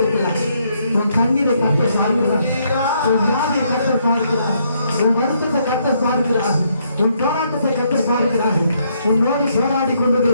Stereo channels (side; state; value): both; inverted; correlation -0.73